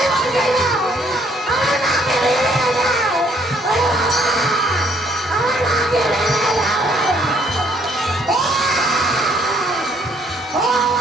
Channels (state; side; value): normal; both; correlation 0.65